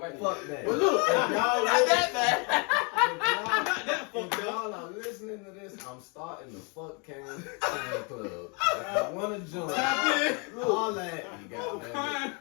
Fuck man. that. But look, If y'all Not listen- that bad. If y'all are listening to this, I'm starting the Fuck Cam fan club. If you wanna join, all that you got, man.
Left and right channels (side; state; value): right; quieter; 33.5 dB